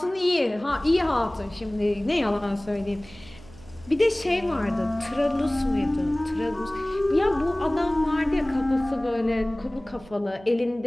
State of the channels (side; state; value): right; noise; hum, 21 dB below the sound